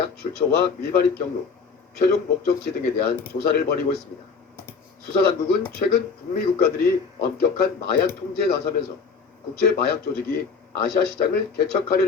출처와 밀반입 경로, 최종 목적지 등에 대한 조사를 벌이고 있습니다. 수사당국은 최근 북미 국가들이 엄격한 마약 통제에 나서면서 국제 마약 조직이 아시아 시장을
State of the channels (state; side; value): quieter; right; 5.3 dB